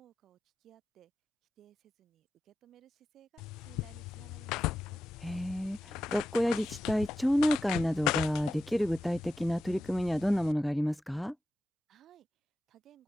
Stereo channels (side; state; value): both; normal; correlation 0.90